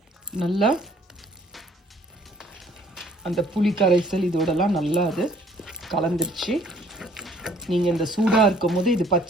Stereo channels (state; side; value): normal; both; correlation 0.59